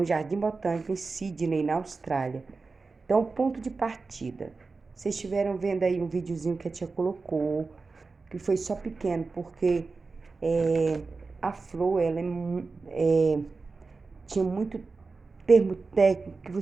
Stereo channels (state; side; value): quieter; left; 4.1 dB